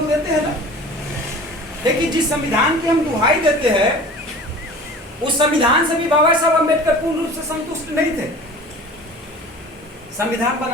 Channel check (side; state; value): both; normal; correlation 0.41